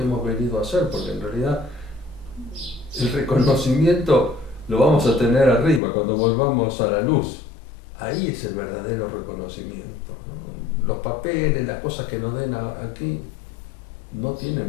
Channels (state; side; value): drops out; right; at 5.8 s